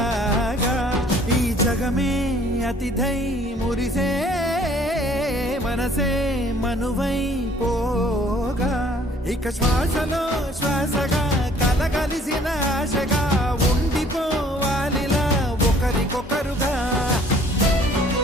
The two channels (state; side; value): normal; both; correlation 0.57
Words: ఈ జగమే అతిథై మురిసే మనసే మనువై పోగా ఇక శ్వాసలో శ్వాసగా కలగలిసిన ఆశగా ఉండిపోవాలిలా ఒకరికొకరుగా